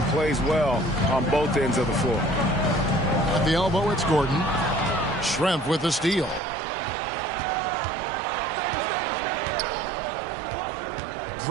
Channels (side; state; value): left; drops out; at 6.4 s